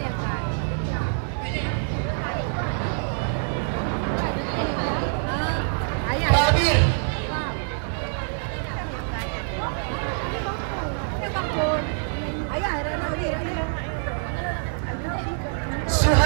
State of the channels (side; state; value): left; silent; digital silence